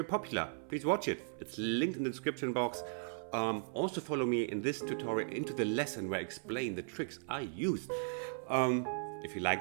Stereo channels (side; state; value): left; silent; 53 dB below the other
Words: popular. Please watch it, it's linked in the description box. Also follow me in this tutorial into the lesson where I explain the tricks I used. If you